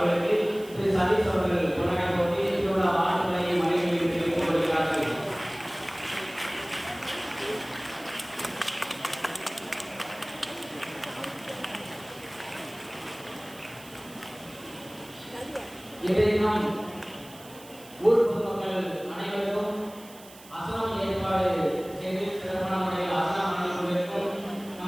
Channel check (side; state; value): right; noise; hiss, 20 dB below the sound